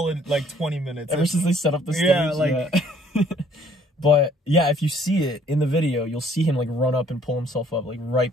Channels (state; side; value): normal; both; correlation 0.60